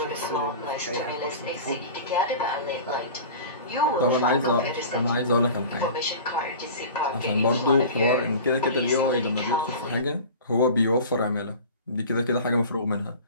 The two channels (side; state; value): both; inverted; correlation -0.37